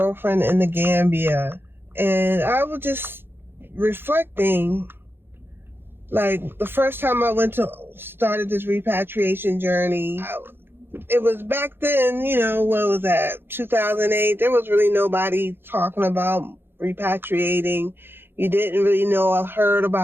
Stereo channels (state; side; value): late; left; 0.10 ms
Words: in the Gambia, and I was just reflecting. Like, the first time I started this repatriation journey, it was back then, what was that, 2008? There was really nobody talking about repatriating. You didn't really know. I heard